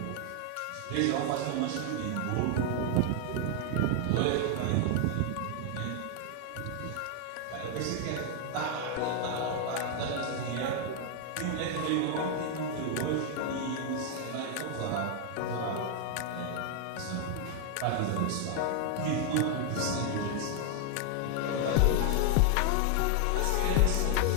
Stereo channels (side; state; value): both; different; correlation 0.00